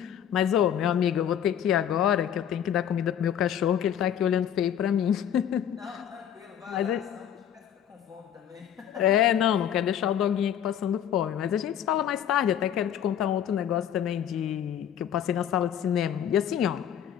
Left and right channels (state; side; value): quieter; right; 9.6 dB